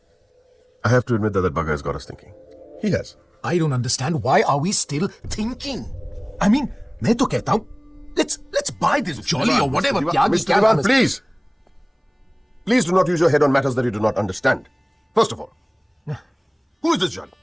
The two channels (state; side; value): identical; both; correlation 1.00